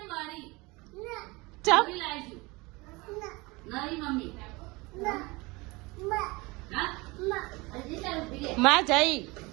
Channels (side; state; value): left; quieter; 24.2 dB